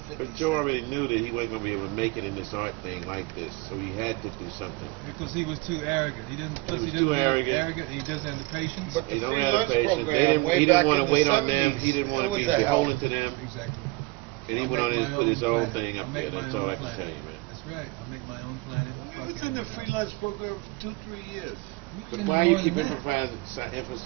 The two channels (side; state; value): left; quieter; 22.7 dB